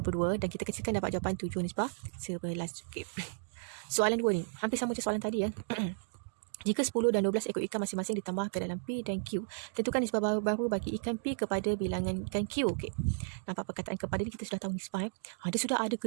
dan kita kecilkan dapat jawapan 7 nisbah 11. Okey. Soalan 2 ni, hampir sama macam soalan tadi ya. Jika 10 dan 12 ekor ikan masing-masing ditambah ke dalam P dan Q, tentukan nisbah baru bagi ikan P kepada bilangan ikan Q. Okey. Nampak perkataan kepada ni kita sudah tahu nisbah. Dia sudah ada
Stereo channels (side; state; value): left; silent; digital silence